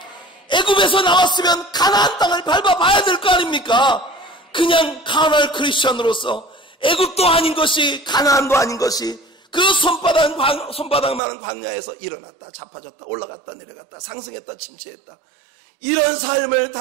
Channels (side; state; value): left; drops out; at 11.2 s